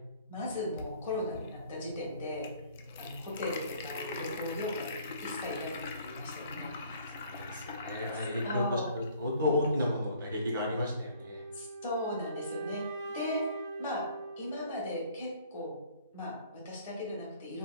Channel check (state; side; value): inverted; both; correlation -0.56